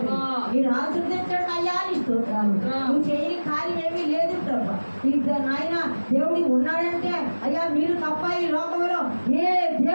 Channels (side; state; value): both; inverted; correlation -1.00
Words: మీరు ఆశీర్వదించండి అయ్యా నీ స్తోత్రాలు. నువ్వు చేయని కార్యం ఏమీ లేదు ప్రభు. ఇద్దరు నాయన దేవుడి ఉన్నాడంటే అయ్యా మీరు తప్ప ఈ లోకంలో ఏ